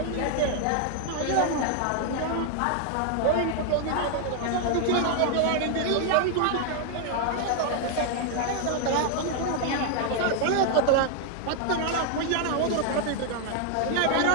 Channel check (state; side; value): different; both; correlation 0.00